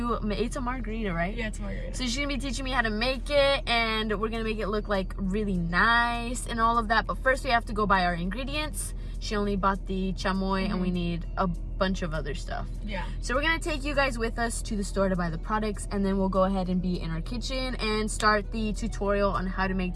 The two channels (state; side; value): identical; both; correlation 1.00